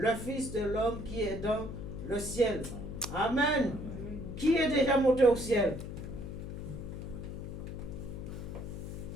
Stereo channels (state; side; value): noise; left; hum, 7 dB below the sound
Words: Fils de l'homme qui est dans le ciel. Amen. Qui est déjà monté au ciel?